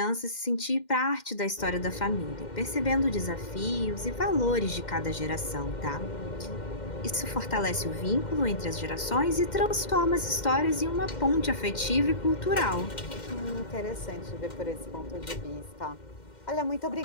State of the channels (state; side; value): late; right; 2.1 ms